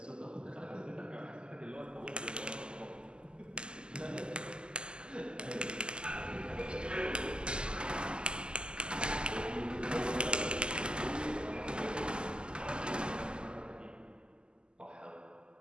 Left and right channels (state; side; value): late; left; 0.048 ms